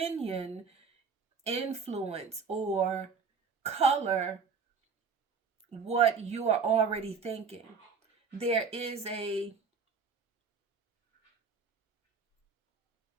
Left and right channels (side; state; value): left; quieter; 5.5 dB